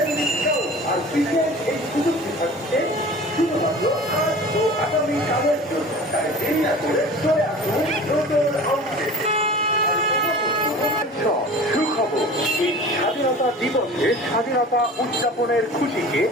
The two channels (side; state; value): both; normal; correlation 0.40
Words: ডিসকাউন্ট। আর বিশেষ এই সুযোগটি থাকছে শুধুমাত্র আজ ও আগামীকালের জন্য। তাই দেরি না করে চলে আসুন নতুন আউটলেটে। সুখবর, এই স্বাধীনতা দিবসে স্বাধীনতা উদযাপনের খুশিকে